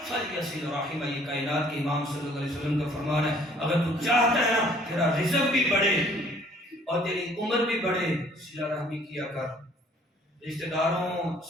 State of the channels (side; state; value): both; normal; correlation 0.58